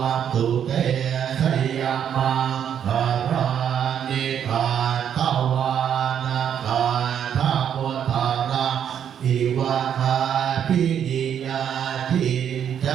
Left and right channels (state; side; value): quieter; left; 8.9 dB